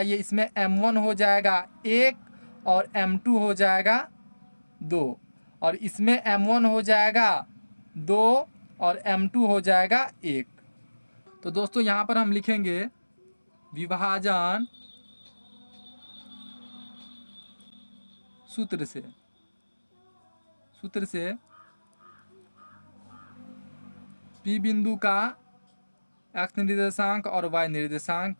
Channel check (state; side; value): inverted; both; correlation -1.00